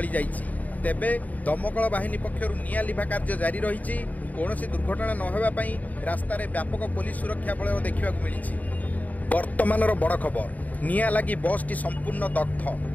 ତେବେ ଦମକଳ ବାହିନୀ ପକ୍ଷରୁ ନିଆଁ ଲିଭା କାର୍ଯ୍ୟ ଜାରି ରହିଛି। କୌଣସି ଦୁର୍ଘଟଣା ନ ହେବା ପାଇଁ ରାସ୍ତାରେ ବ୍ୟାପକ ପୋଲିସ ସୁରକ୍ଷା ବଳୟ ଦେଖିବାକୁ ମିଳିଛି। ବର୍ତ୍ତମାନର ବଡ଼ ଖବର ନିଆଁ ଲାଗି ବସ୍ଟି ସମ୍ପୂର୍ଣ୍ଣ ଦଗ୍ଧ।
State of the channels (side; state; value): right; late; 0.075 ms